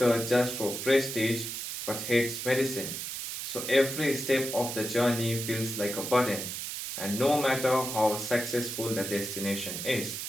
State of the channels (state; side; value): noise; right; hiss, 5 dB below the sound